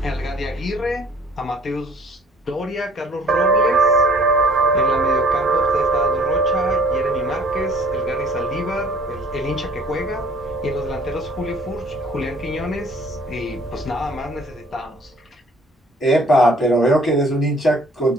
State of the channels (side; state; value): both; normal; correlation 0.56